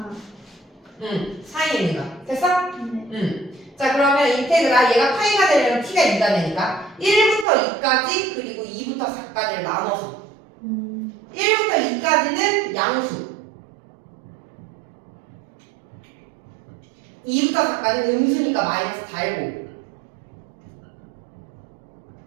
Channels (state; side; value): drops out; left; at 7.5 s